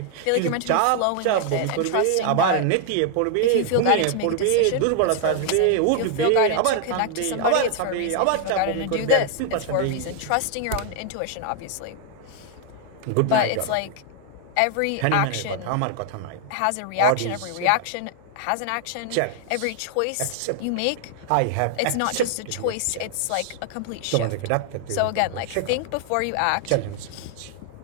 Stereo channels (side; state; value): both; different; correlation 0.00